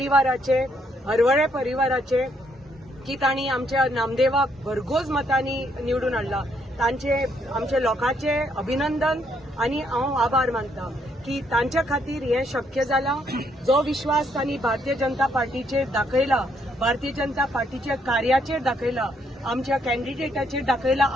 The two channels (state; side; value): normal; both; correlation 0.72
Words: हरवळे परिवाराचे, की तांणी आमच्या नामदेवाक भरघोस मतांनी निवडून हाडला. तांचे आमच्या लोकांचे अभिनंदन आनी हांव आभार मानता की तांच्या खातीर हें शक्य जालां. जो विश्वास तांणी भारतीय जनता पार्टीचेर दाखयला, भारतीय जनता पार्टीच्या कार्याचेर दाखयला, आमच्या कॅन्डिडेटाचेर दाखयला,